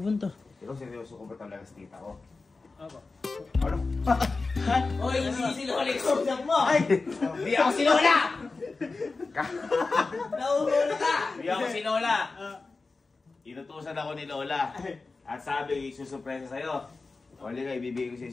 punta? Ikaw seryoso ko ba talaga sa tita ko? Ako. Ano? Oy, hindi si Lola yung mo! Ay! Di ako si Lola! Nauhuli ka! Di ako si Lola! Inutusan ako ni Lola. At sabi, susurpresa sa'yo. O liga, ibibigay ko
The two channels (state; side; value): quieter; right; 3.9 dB